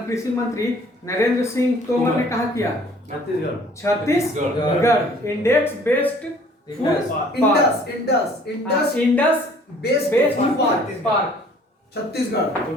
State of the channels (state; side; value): normal; both; correlation 0.55